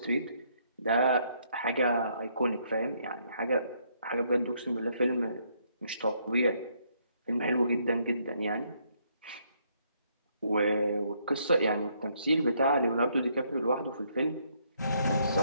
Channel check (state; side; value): inverted; both; correlation -0.71